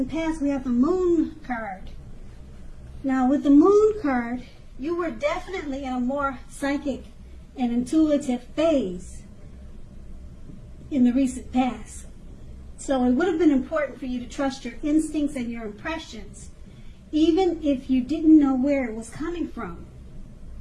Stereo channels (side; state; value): both; identical; correlation 1.00